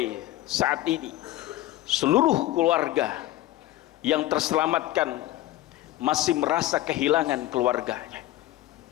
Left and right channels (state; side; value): quieter; right; 15.5 dB